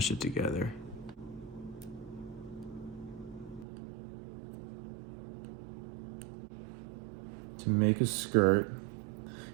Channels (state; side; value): drops out; left; at 3.7 s